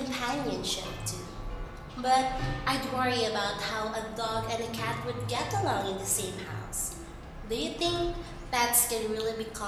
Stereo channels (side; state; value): both; identical; correlation 1.00